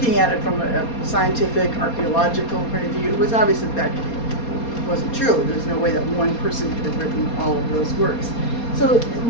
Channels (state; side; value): late; right; 4.2 ms